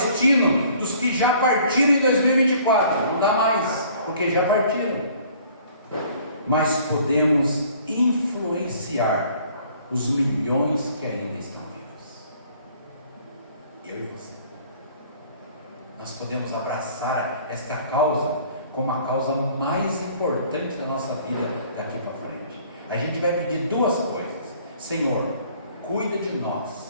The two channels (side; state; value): both; inverted; correlation -0.55